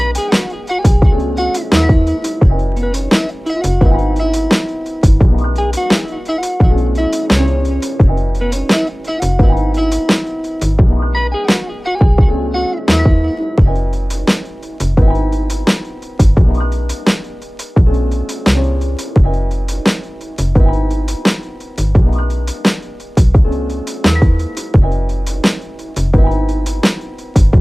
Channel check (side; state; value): both; normal; correlation 0.98